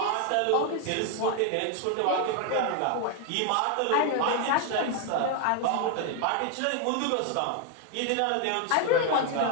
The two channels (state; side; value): different; both; correlation 0.01